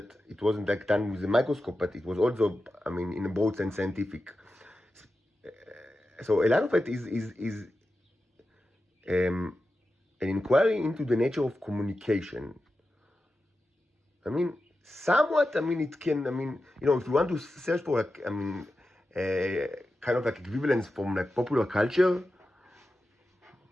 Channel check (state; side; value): normal; both; correlation 0.91